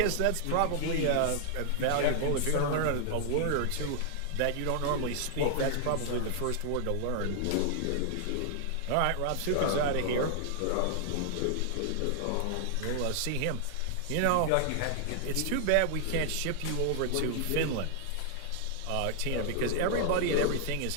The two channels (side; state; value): both; different; correlation 0.00